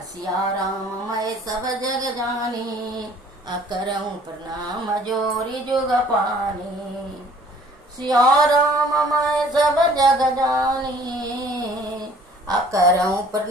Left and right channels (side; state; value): both; normal; correlation 0.54